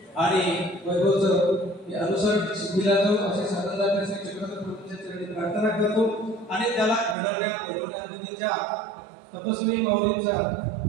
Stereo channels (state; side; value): drops out; left; at 7.2 s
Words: आणि वैभवचं अनुसरण सिद्धीला जाऊ असे साधनदार चक्रधर प्रभूंच्या चरणी प्रार्थना करतो आणि त्याला घडवण्यामध्ये ज्या तपस्वी माऊलींचा